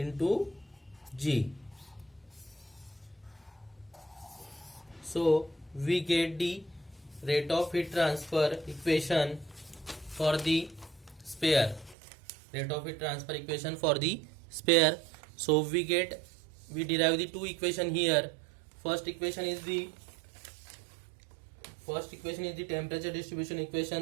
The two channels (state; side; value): drops out; left; at 12.0 s